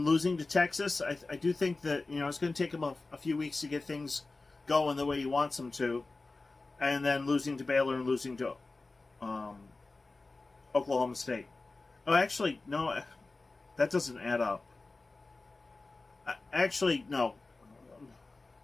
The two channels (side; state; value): right; quieter; 3.5 dB